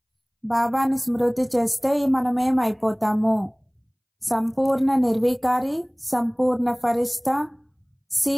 బాబాని స్మృతి చేస్తే మనమేం అయిపోతాము? సంపూర్ణ నిర్వికారి, సంపూర్ణ ఫరిష్తా, సి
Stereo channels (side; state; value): both; identical; correlation 1.00